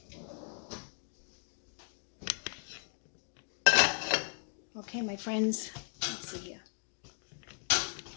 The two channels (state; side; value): silent; right; 53 dB below the other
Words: Okay, my friends, let's see here.